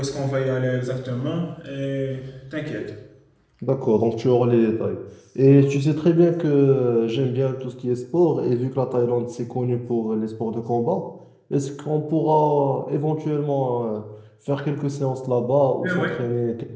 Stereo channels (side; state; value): both; identical; correlation 1.00